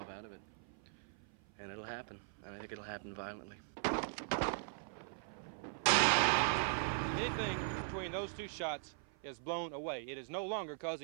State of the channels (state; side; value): silent; left; 51 dB below the other